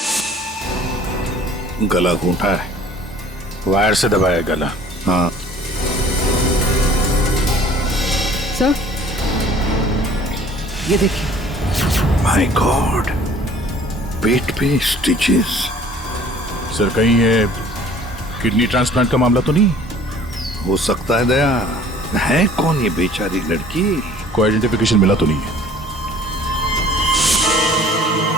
गला घूंटा है, वायर से दबाया गला। हाँ सर, ये देखिए। माय गॉड, पेट पे स्टिचेस। सर कहीं ये किडनी ट्रांसप्लांट का मामला तो नहीं? हो सकता है दया। है कौन ये बेचारी लड़की? कोई आइडेंटिफिकेशन मिला तो नहीं है?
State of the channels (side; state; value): both; normal; correlation 0.52